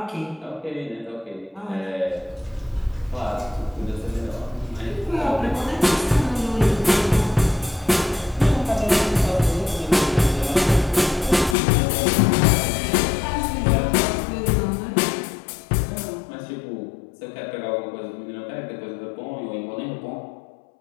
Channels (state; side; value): drops out; right; at 11.6 s